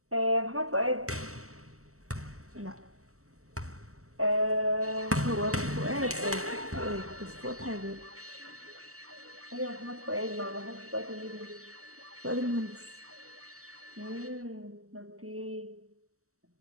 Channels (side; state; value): left; late; 0.64 ms